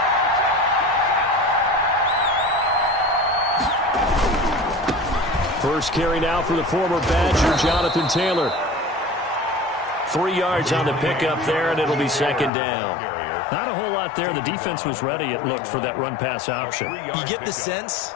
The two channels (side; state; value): right; drops out; at 12.5 s